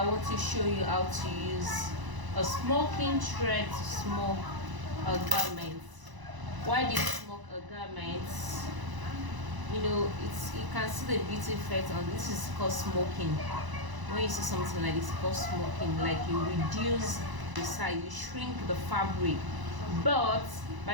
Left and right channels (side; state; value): left; late; 1.0 ms